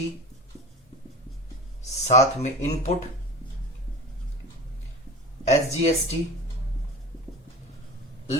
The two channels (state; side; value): normal; both; correlation 0.33